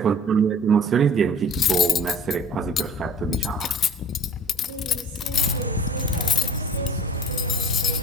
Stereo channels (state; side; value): normal; both; correlation 0.44